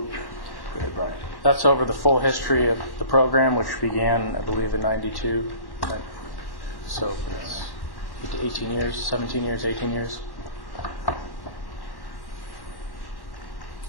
That's over the full history of the program, which began, I believe, in '92. So it's 18 years, 17 years, 18 years.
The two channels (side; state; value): right; late; 1.1 ms